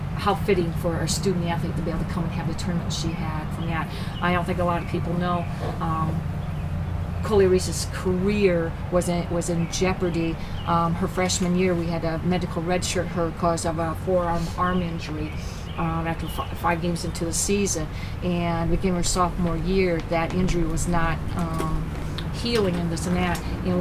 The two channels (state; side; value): identical; both; correlation 1.00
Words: how fitting for a student athlete to be able to come and have the tournament she had from that. I don't think a lot of people know. Coley Reese's career was in jeopardy. Her freshman year, we had a medical redshirt her because of a forearm arm injury after 5 games into the season. And beginning her sophomore year, that injury was not healing and this and that. And